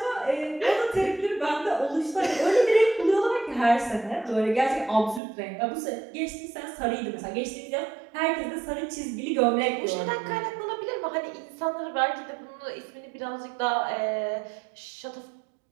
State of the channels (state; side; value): drops out; left; at 5.2 s